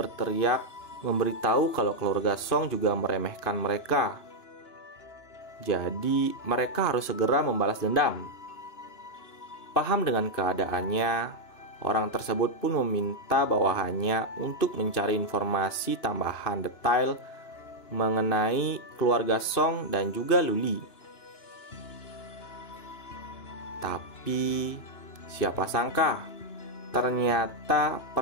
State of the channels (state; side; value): late; right; 2.9 ms